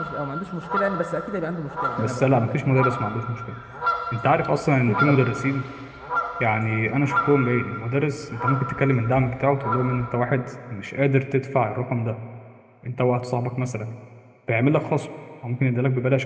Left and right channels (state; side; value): identical; both; correlation 1.00